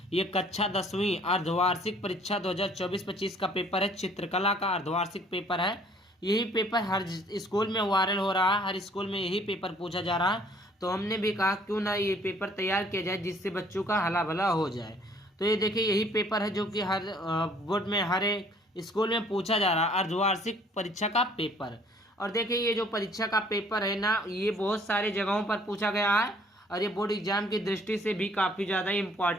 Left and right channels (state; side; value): normal; both; correlation 0.58